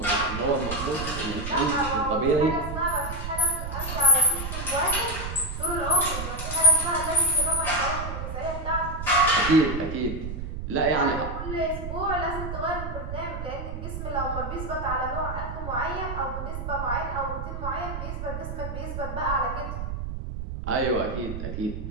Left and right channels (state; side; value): noise; right; rumble, 6 dB below the sound